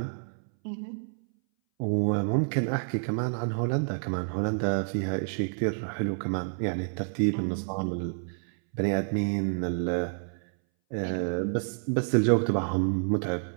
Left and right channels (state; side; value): silent; left; 59 dB below the other